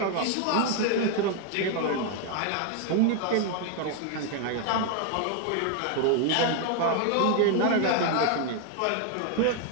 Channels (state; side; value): different; both; correlation 0.00